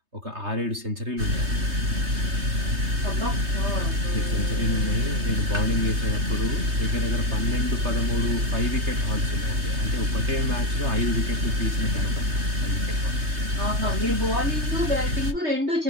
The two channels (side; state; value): left; late; 3.3 ms